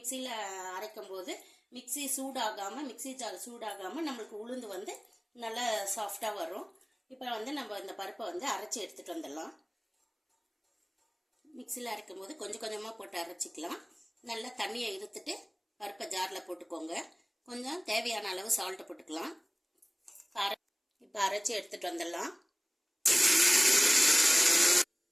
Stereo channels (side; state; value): both; identical; correlation 1.00